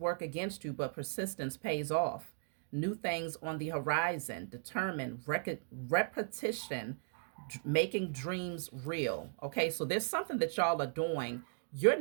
against you, but persistence pays off. New things on the horizon, determined, repetition, making dreams real. Okay, so there's something that y'all are doing. You're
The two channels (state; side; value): silent; left; digital silence